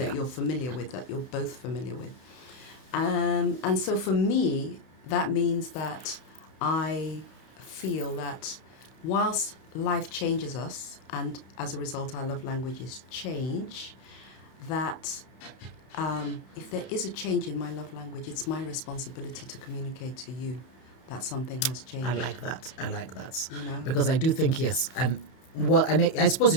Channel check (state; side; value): late; right; 31 ms